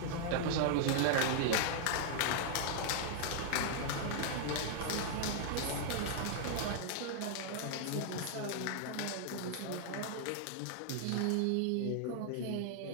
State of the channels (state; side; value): different; both; correlation 0.00